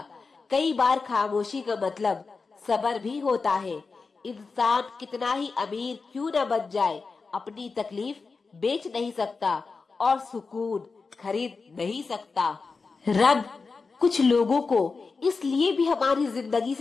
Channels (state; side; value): quieter; right; 4.4 dB